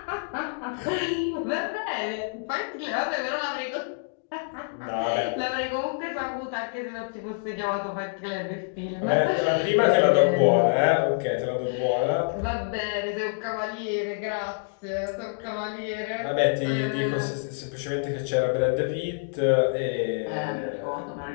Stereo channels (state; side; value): silent; right; digital silence